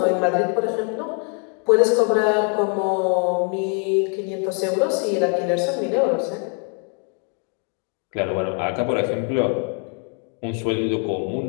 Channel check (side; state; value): right; quieter; 38.4 dB